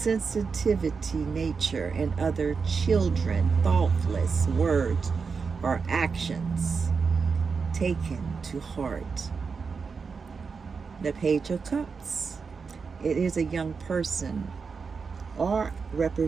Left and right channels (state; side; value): quieter; left; 5.2 dB